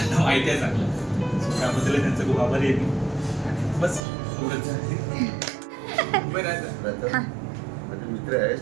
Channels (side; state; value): left; drops out; at 4.0 s